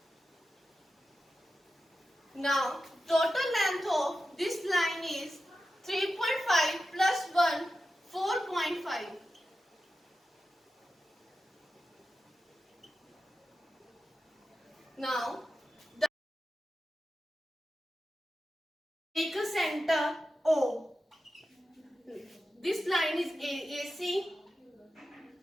Now total length of this line is 3.5 plus 1 4.5. Now take a center O. This line is AC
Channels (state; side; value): normal; both; correlation 0.92